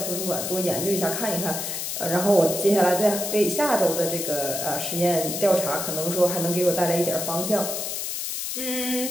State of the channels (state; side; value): noise; left; hiss, 3 dB below the sound